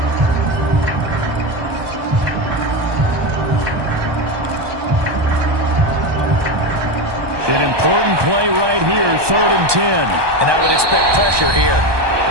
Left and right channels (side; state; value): left; late; 1.2 ms